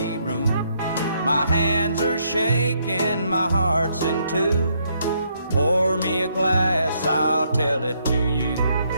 room. My hands are shaking, my heart's in two. Pour me a glass, I'll tell it to you.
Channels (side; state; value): both; inverted; correlation -0.73